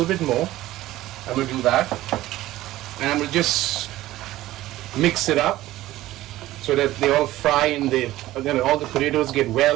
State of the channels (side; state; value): left; quieter; 15.8 dB